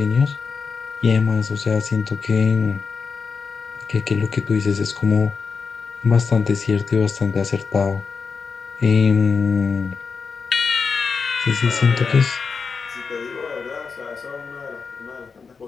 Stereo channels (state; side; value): quieter; right; 5.2 dB